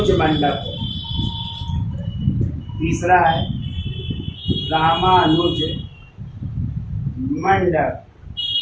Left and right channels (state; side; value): identical; both; correlation 1.00